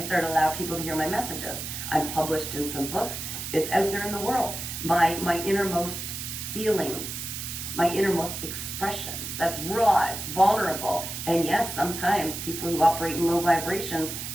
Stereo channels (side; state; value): right; noise; hiss, 6 dB below the sound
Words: started allowing people to hear my messages. I'm published in some books. It's out there in the world. My innermost feelings, my innermost expressions. That's raw, it's vulnerable. And yes, sometimes people who operate in low vibrations,